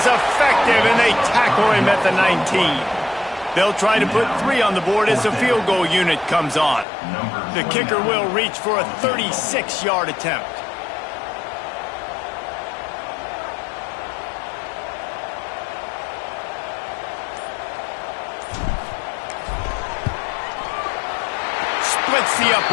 effective, and they tackle him at the 19. They'll try to put 3 on the board as the field goal unit comes on. The kicker will reach for a 36-yard attempt. Splits the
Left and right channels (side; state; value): right; drops out; at 6.9 s